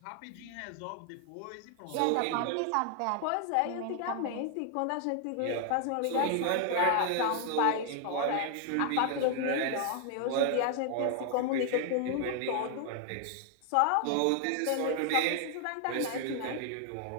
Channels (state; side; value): different; both; correlation 0.00